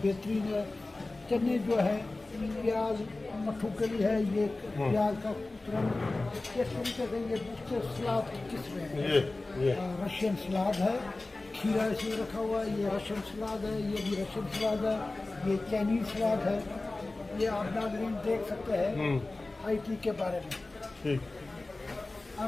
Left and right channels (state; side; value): quieter; right; 3.1 dB